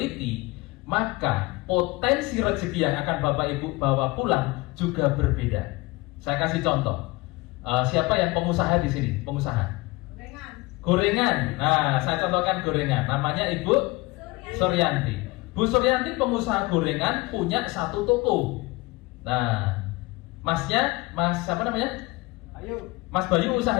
maka potensi rezeki yang akan Bapak Ibu bawa pulang juga berbeda. Saya kasih contoh. Siapa yang pengusaha di sini? Pengusaha? Gorengan. Nah, saya contohkan gorengan. Namanya Ibu Suryanti. Bu Suryanti pengusaha gorengan, punya 1 toko. Nah, masnya, Mas siapa namanya? Mas Bayu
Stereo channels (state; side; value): quieter; right; 22.7 dB